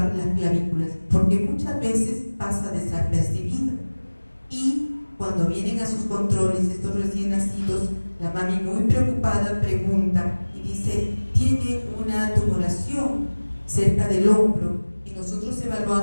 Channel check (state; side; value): inverted; both; correlation -1.00